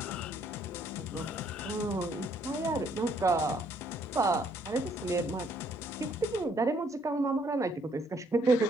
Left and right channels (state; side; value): normal; both; correlation 0.67